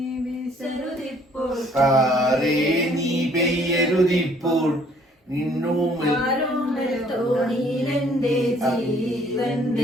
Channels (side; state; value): both; normal; correlation 0.60